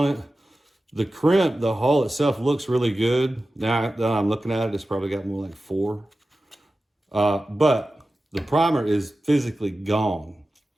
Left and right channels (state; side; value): normal; both; correlation 0.94